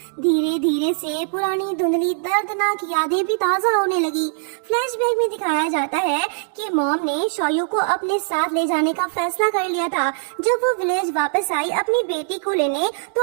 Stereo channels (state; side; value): silent; left; digital silence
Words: धीरे धीरे से पुरानी धुंधली दर्दनाक यादें भी ताजा होने लगी। फ्लैशबैक में दिखाया जाता है कि मॉम ने शौयू को अपने साथ ले जाने का फैसला कर लिया था। जब वो विलेज वापस आई अपनी बेटी को लेने,